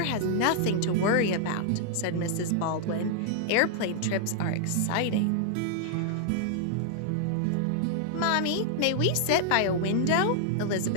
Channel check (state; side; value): different; both; correlation -0.01